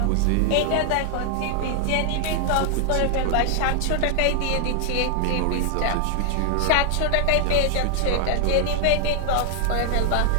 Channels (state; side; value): different; both; correlation 0.00